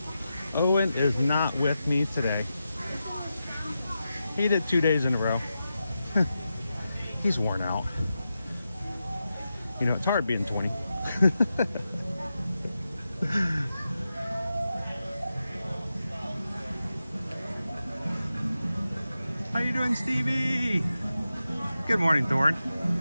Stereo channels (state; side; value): inverted; both; correlation -0.90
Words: Owen is not with me today. He did 2 days in a row. He's worn out. You know, it's hard being 20. How you doing, Stevie? Good morning, Thorne.